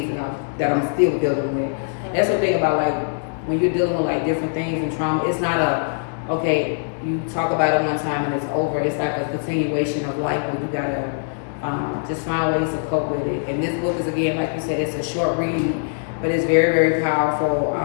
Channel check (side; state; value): right; silent; digital silence